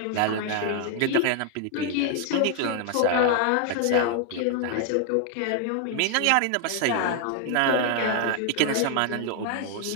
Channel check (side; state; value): both; different; correlation 0.00